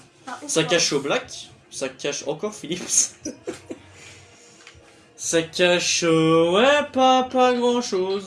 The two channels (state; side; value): identical; both; correlation 1.00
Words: Ça cache au Black. Ça cache encore Philips. Ça cache. Ouais, pas grand